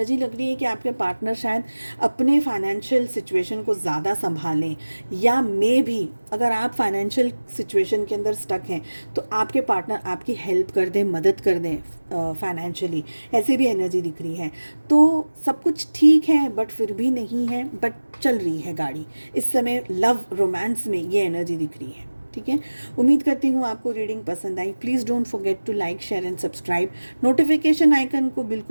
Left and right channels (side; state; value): both; inverted; correlation -1.00